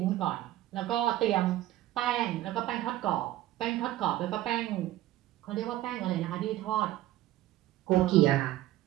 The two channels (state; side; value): quieter; left; 15.0 dB